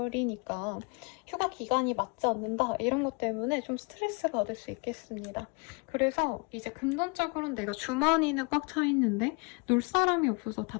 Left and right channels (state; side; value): quieter; right; 32.0 dB